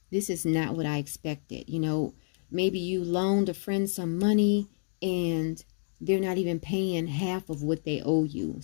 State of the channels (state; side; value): silent; right; digital silence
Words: this is not what I expected. You know, maybe you loaned a friend some money and they're not even paying half of what they owe you.